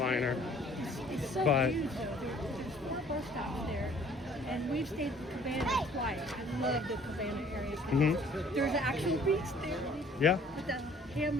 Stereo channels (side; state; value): both; normal; correlation 0.56